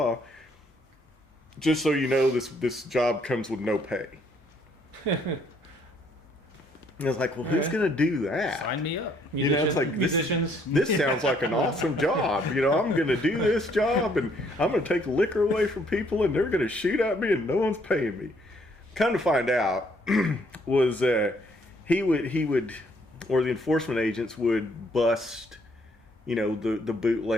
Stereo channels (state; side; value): normal; both; correlation 0.67